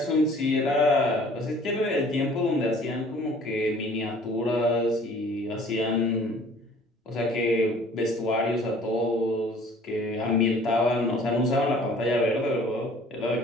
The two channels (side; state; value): both; normal; correlation 0.52